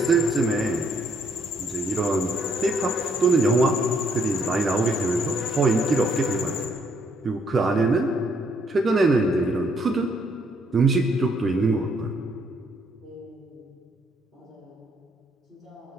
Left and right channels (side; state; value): both; normal; correlation 0.69